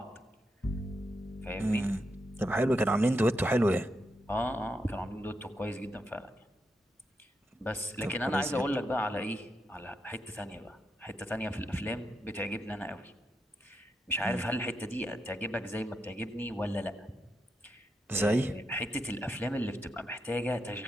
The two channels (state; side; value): normal; both; correlation 0.84